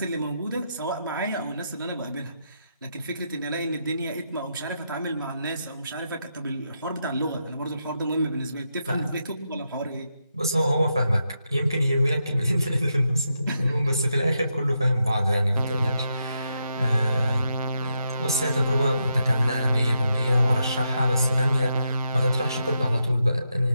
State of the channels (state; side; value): inverted; both; correlation -0.83